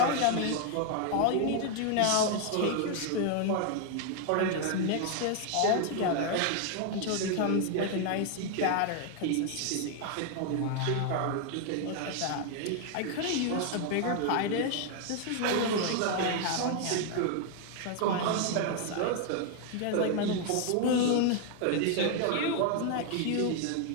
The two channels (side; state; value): both; different; correlation 0.00